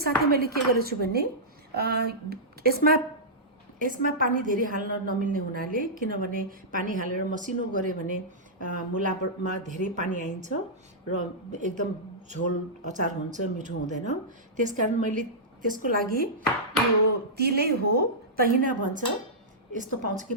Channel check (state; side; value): normal; both; correlation -0.13